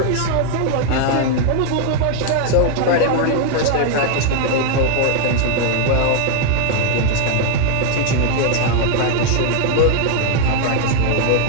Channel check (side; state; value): both; different; correlation 0.00